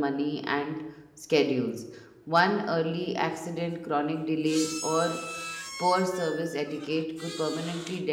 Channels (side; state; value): both; identical; correlation 1.00